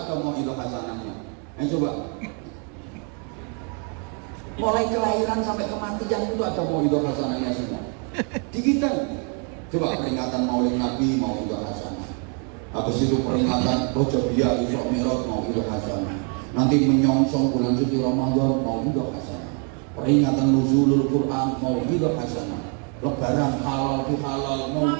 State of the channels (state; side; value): quieter; left; 38.9 dB